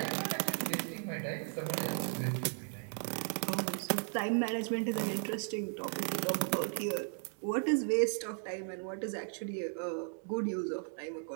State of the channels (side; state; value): left; silent; 54 dB below the other